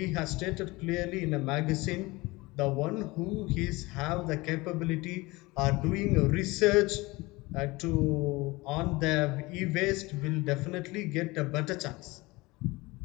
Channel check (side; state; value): right; quieter; 22.4 dB